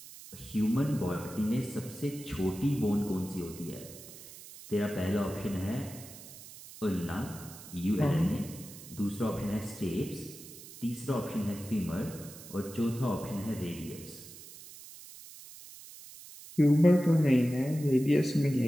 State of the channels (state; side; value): noise; right; hiss, 16 dB below the sound